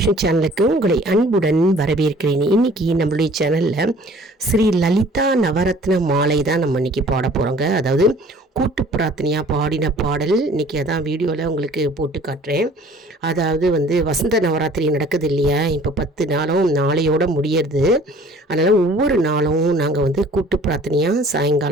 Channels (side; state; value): both; normal; correlation 0.52